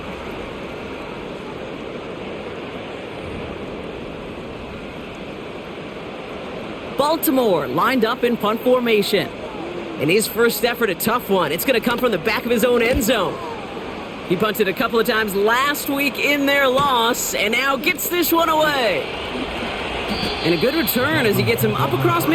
Baltimore lined up in punt formation. In his first effort, a tough one. It's going to come from the back of his own end zone. He punted a couple of times last week in their loss, and now gets this one away. And a good return as he gets him up across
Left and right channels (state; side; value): identical; both; correlation 1.00